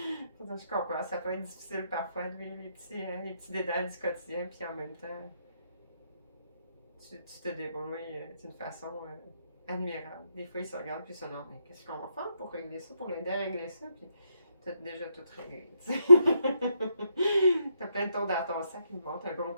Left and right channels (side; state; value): both; inverted; correlation -0.78